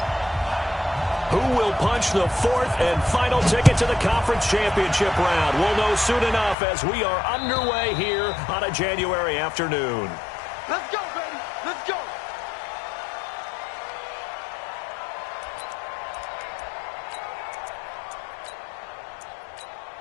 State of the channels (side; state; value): right; drops out; at 6.6 s